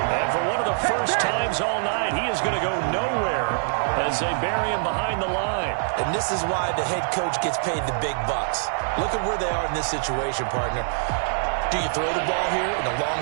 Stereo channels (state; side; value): silent; left; digital silence